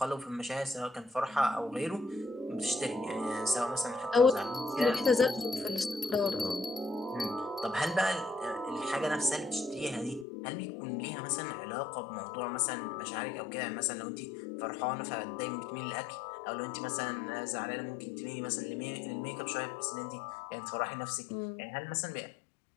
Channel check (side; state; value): right; drops out; at 10.2 s